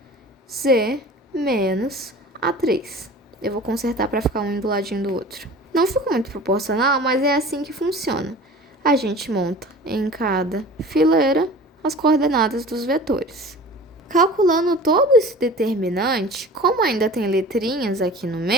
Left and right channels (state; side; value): normal; both; correlation 0.40